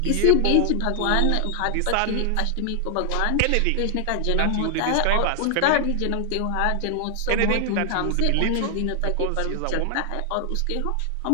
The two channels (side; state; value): both; different; correlation 0.00